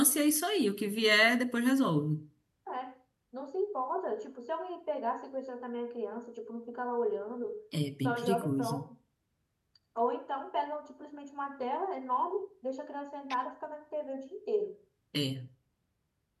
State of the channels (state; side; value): identical; both; correlation 1.00